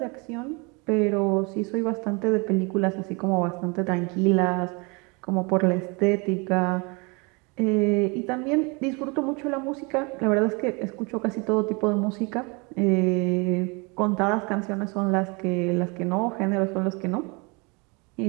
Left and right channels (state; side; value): quieter; left; 29.8 dB